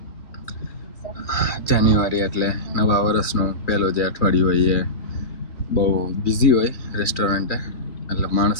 જાન્યુઆરી એટલે નવા વર્ષનું પહેલું જે અઠવાડિયું હોય એ બહુ બિઝી હોય રેસ્ટોરન્ટે. એટલે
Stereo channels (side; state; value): right; late; 2.4 ms